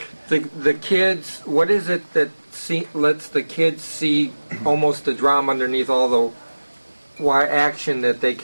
the kids, what is it that lets the kids see almost the drama underneath all the action that they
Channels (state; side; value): inverted; both; correlation -1.00